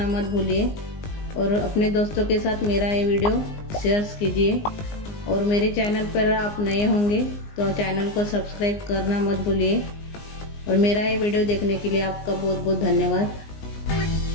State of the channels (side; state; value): right; late; 19 ms